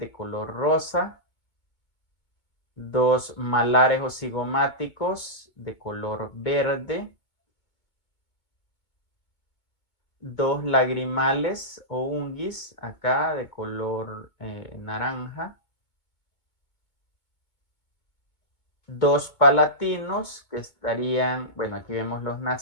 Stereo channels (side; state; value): right; late; 2.2 ms